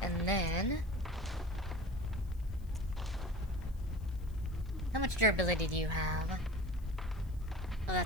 And then... How much durability do you have? Oh,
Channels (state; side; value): noise; left; hiss, 28 dB below the sound